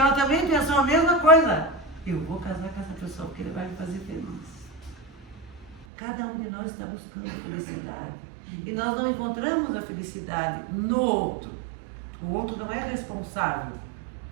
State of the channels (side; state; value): left; drops out; at 5.9 s